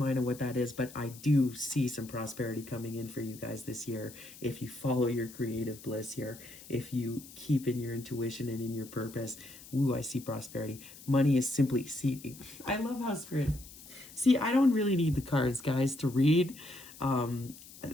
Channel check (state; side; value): noise; left; hiss, 18 dB below the sound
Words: of what that is. But I do see some prosperity coming in for you guys this year if you follow your creative bliss here, if you keep in your intuition and in your purpose. Ooh, I see prosperity. Money is simply, see, I love how spirit, see, I don't really need the cards, guys, to read.